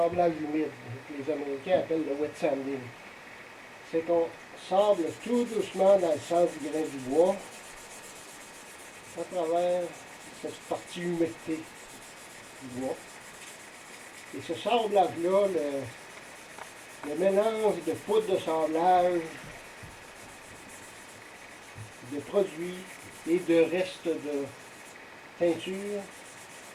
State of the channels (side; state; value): both; identical; correlation 1.00